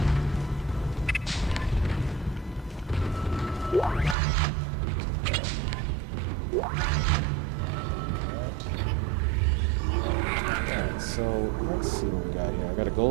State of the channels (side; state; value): left; drops out; at 4.2 s